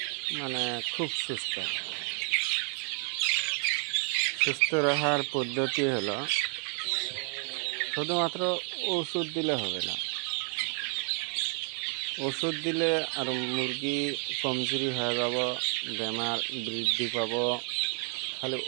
খুব সুস্থ রাখার পদ্ধতি হলো শুধুমাত্র ওষুধ দিলে হবে না। ওষুধ দিলে আর মুরগি কমজোরি হয়ে যাব, বেমার বৃদ্ধি পাব। খালি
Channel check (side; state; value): left; quieter; 39.1 dB